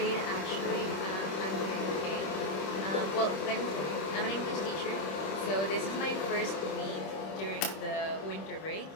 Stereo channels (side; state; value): right; late; 26 ms